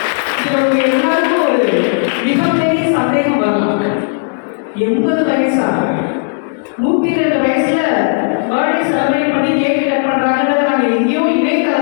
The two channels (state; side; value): silent; right; digital silence